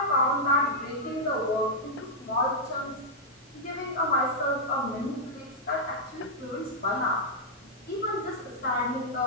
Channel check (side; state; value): both; normal; correlation -0.05